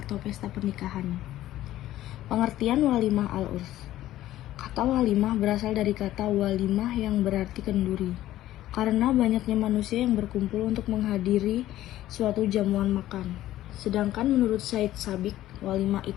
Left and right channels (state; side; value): quieter; right; 14.2 dB